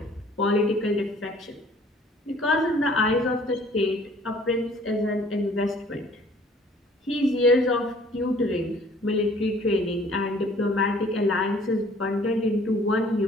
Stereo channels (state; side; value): normal; both; correlation 0.55